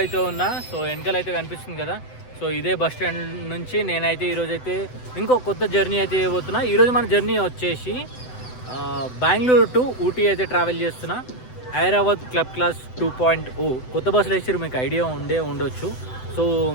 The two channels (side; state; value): right; late; 7.9 ms